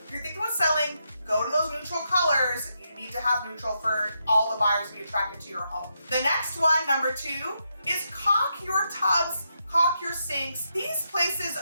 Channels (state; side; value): inverted; both; correlation -0.82